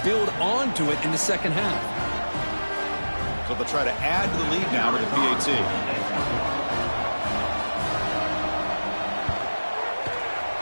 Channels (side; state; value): both; inverted; correlation -1.00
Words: build onto it in the second half. So they'll try to add to the lead now with the PAT.